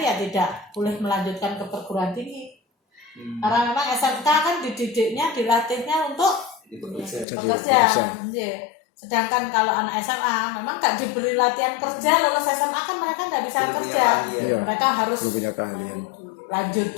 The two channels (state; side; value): drops out; right; at 7.2 s